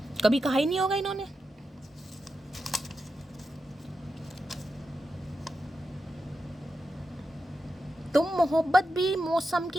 कभी कहा ही नहीं होगा इन्होंने। तुम मोहब्बत भी मौसम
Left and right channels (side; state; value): both; normal; correlation 0.89